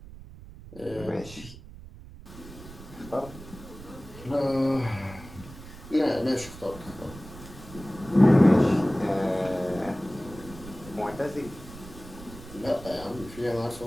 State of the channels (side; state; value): right; noise; rumble, 16 dB below the sound